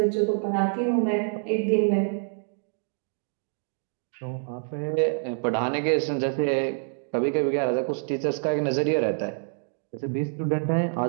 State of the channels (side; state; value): left; silent; digital silence